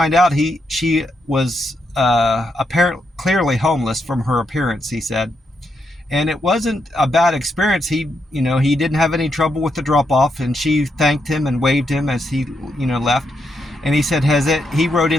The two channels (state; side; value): normal; both; correlation 0.81